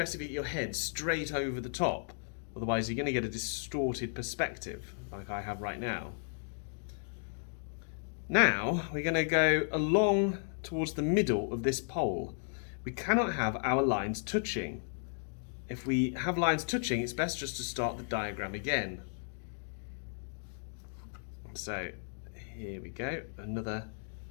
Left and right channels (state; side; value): silent; right; digital silence